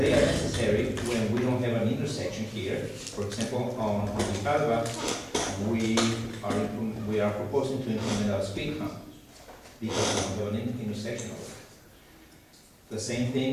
are necessary when we don't have an intersection here. For example, on Villalba, we are proposing to implement a speed hump because we don't have an intersection over there. The same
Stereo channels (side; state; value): both; identical; correlation 1.00